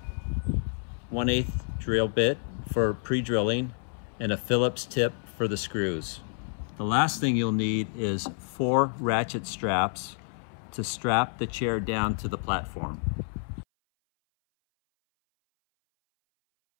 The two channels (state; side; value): silent; right; 59 dB below the other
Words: 1/8 drill bit for pre-drilling, and a Phillips tip for the screws. The last thing you'll need is 4 ratchet straps to strap the chair down to the platform.